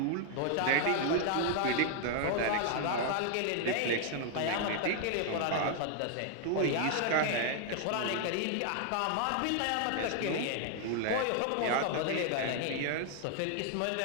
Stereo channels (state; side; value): different; both; correlation 0.00